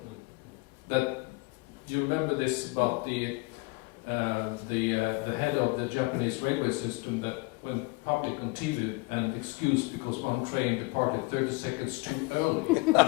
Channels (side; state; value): right; quieter; 25.3 dB